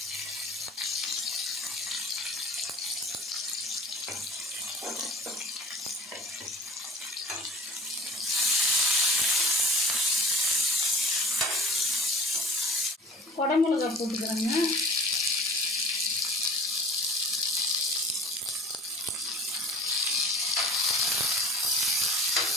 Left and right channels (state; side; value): normal; both; correlation 0.44